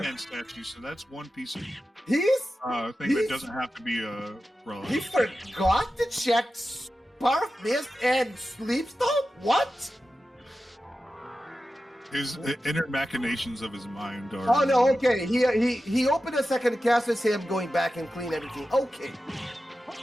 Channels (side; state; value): both; normal; correlation 0.93